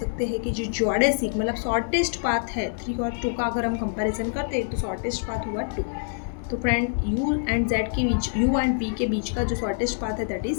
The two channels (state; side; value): silent; right; digital silence